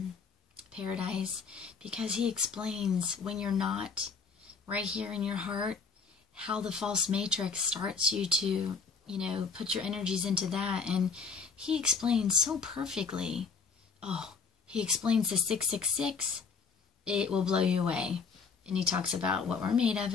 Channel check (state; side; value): quieter; right; 5.3 dB